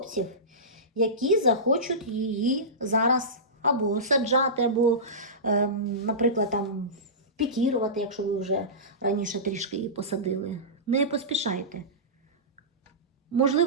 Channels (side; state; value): both; normal; correlation -0.20